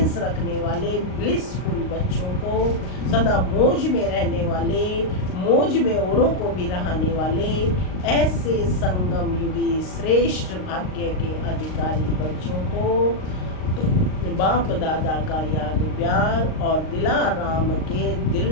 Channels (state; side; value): late; right; 38 ms